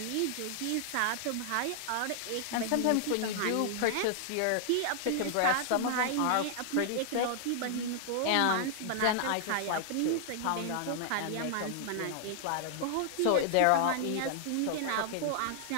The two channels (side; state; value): both; different; correlation -0.01